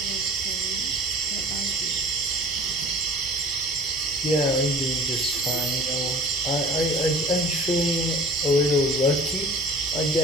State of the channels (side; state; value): both; normal; correlation 0.44